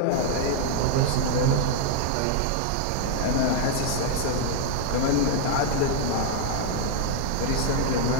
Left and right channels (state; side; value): different; both; correlation -0.01